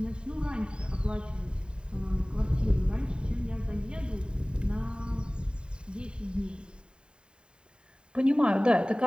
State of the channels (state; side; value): late; left; 0.050 ms